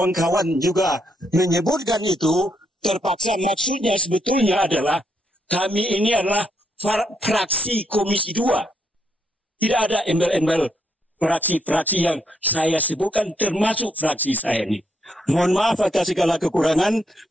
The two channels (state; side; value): normal; both; correlation 0.77